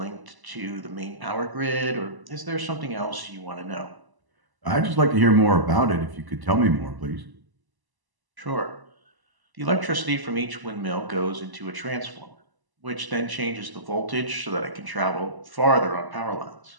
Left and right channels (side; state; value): left; late; 1.0 ms